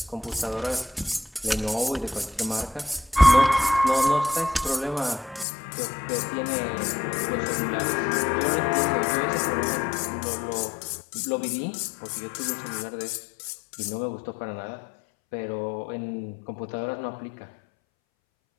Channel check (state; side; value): drops out; right; at 5.5 s